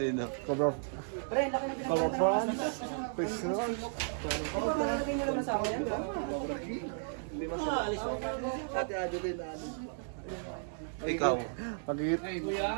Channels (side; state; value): left; silent; digital silence